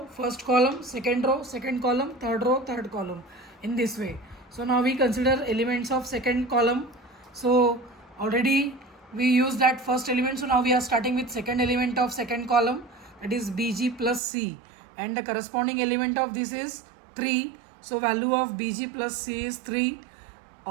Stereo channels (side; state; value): left; drops out; at 14.2 s